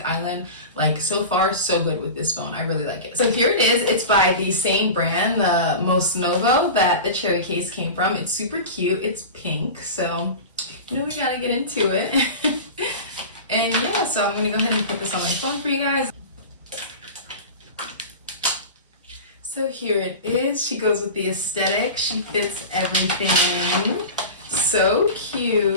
island. Like, so far, so good with this phone. I really like it. So here it is. It's by the same brand, the Most Novo, that the cherry case came from. It's super cute. It's pink, so you know we gotta get into it. And yeah, so I'm gonna go ahead and put this on my phone for you guys. So here it is. She goes with the aesthetic. She fits everything. So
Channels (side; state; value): both; inverted; correlation -0.30